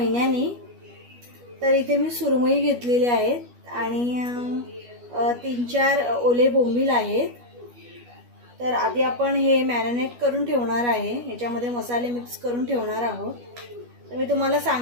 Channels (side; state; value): left; late; 12 ms